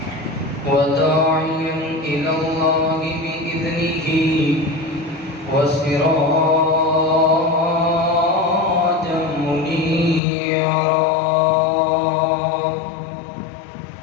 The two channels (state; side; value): drops out; right; at 10.2 s